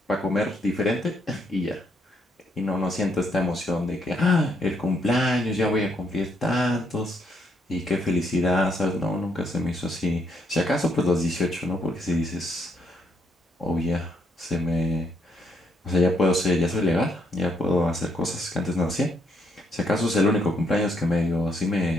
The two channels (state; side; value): normal; both; correlation 0.74